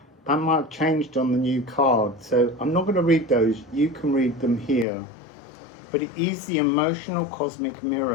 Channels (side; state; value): right; drops out; at 4.9 s